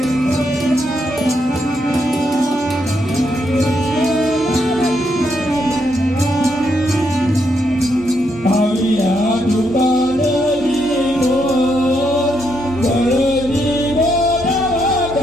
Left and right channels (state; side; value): normal; both; correlation 0.78